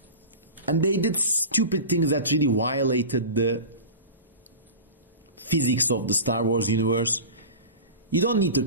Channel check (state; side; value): inverted; both; correlation -0.32